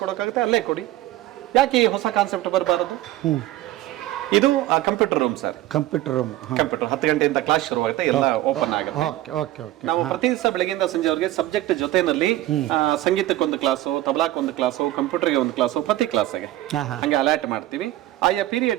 ಕೊಡೋಕ್ಕಾಗುತ್ತೆ ಅಲ್ಲೇ ಕೊಡಿ. ಯಾಕೆ ಈ ಹೊಸ ಕಾನ್ಸೆಪ್ಟ್ ಬರಬಾರದು? ಇದು ಕಂಪ್ಯೂಟರ್ ರೂಮ್ ಸರ್. ಕಂಪ್ಯೂಟರ್ 10 ಗಂಟೆಯಿಂದ ಕ್ಲಾಸ್ ಶುರುವಾಗುತ್ತೆ, ಎಲ್ಲ ಓಪನ್ ಆಗುತ್ತೆ. ನಾವು ಪ್ರತಿ ದಿವಸ ಬೆಳಗ್ಗೆಯಿಂದ ಸಂಜೆವರೆಗೆ ಸಬ್ಜೆಕ್ಟ್ ಜೊತೆನಲ್ಲಿ ಸಂಗೀತಕ್ಕೊಂದು ಕ್ಲಾಸು, ತಬಲಾಕ್ಕೊಂದು ಕ್ಲಾಸು, ಕಂಪ್ಯೂಟರ್ಗೆ ಒಂದು ಕ್ಲಾಸು, ಪ್ರತಿ ಕ್ಲಾಸ್ಗೆ ಹಂಗೆ ಅಲರ್ಟ್ ಮಾಡ್ತೀವಿ. ಆಯಾ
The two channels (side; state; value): left; quieter; 15.4 dB